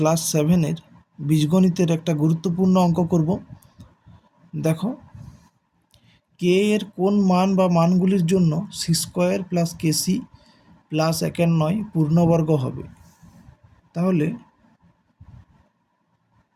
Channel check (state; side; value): identical; both; correlation 1.00